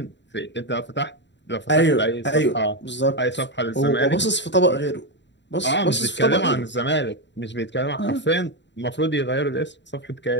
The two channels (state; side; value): late; right; 0.52 ms